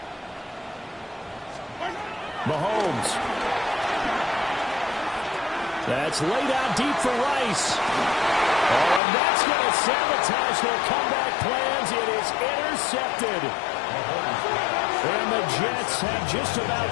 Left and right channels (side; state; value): right; drops out; at 9.0 s